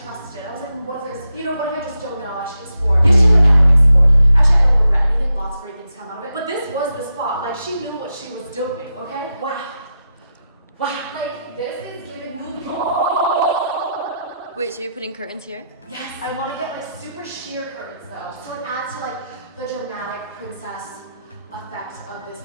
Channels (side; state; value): both; inverted; correlation -0.86